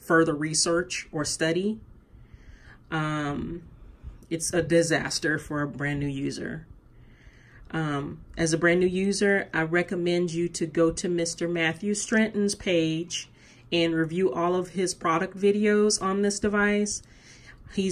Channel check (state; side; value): identical; both; correlation 1.00